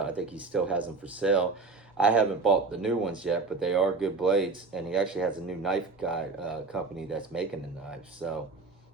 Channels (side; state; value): left; quieter; 4.0 dB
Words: I think he still has them for sale. I haven't bought the new ones yet, but they are good blades. And he actually has a new knife guy company that's making the knives. So,